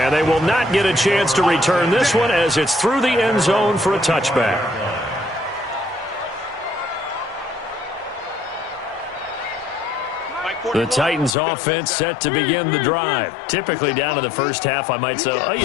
they will not get a chance to return this one as it's through the end zone for a touchback. The Titans offense set to begin the drive. Typically down to the first half, I might say, oh, you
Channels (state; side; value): drops out; right; at 11.3 s